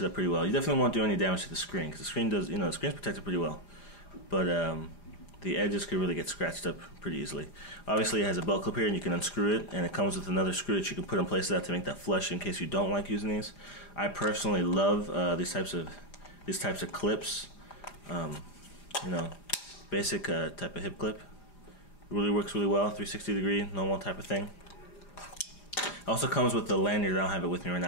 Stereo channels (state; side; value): late; right; 4.9 ms